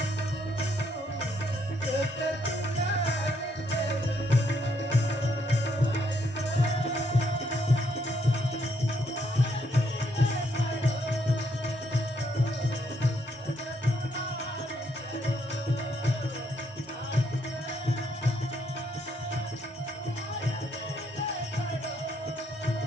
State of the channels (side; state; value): both; normal; correlation 0.73